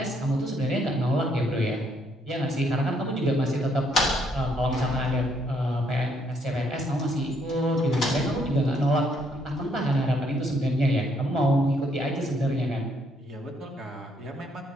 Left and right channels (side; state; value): both; normal; correlation 0.70